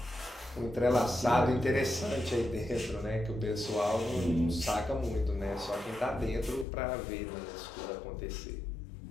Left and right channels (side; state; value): right; drops out; at 6.7 s